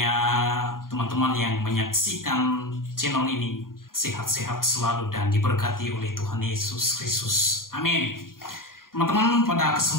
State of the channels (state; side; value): late; right; 0.91 ms